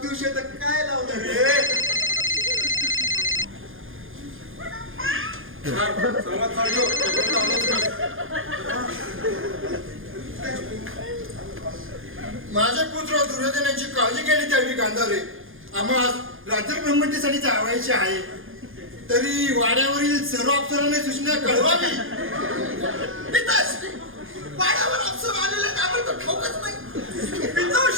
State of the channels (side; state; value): left; late; 0.59 ms